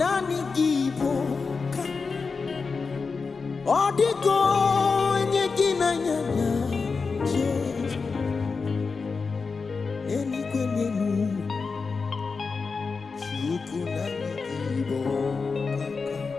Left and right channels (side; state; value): right; quieter; 4.7 dB